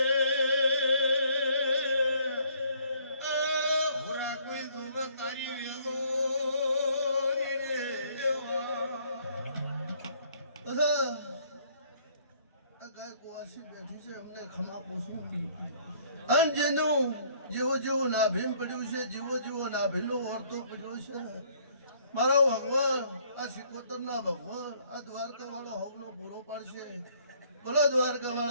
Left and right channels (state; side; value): inverted; both; correlation -0.61